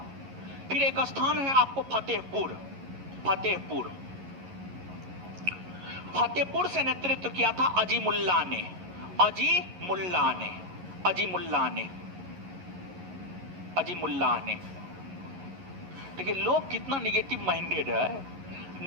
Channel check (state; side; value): late; left; 11 ms